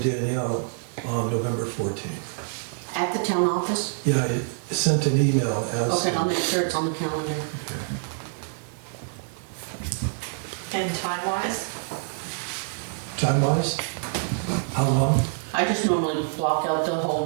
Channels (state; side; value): silent; left; 55 dB below the other